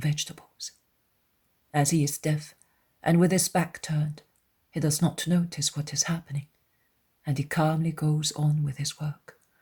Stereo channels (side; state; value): both; identical; correlation 1.00